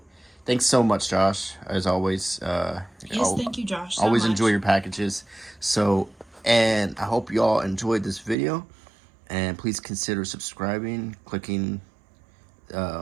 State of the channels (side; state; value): left; drops out; at 8.3 s